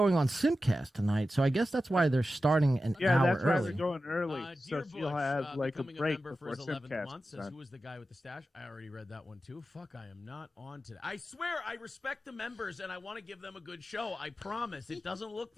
on Simcast tonight, so I guess that's why they're starting an hour that's why early. they're going early, so she'll have like a break for before his 11th Simcast. month, says, who was the guy with the stash? I already read that one too. Fuck, I am not on today. I swear, I respect the members and I want to give them a good show. I promise. It doesn't look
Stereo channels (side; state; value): both; normal; correlation 0.93